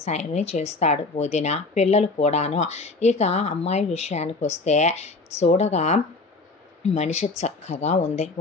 చేస్తాడు, వదిన పిల్లలు కూడాను. ఇక అమ్మాయి విషయానికి వస్తే, చూడగా మనిషి చక్కగా ఉంది,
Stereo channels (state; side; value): quieter; right; 3.6 dB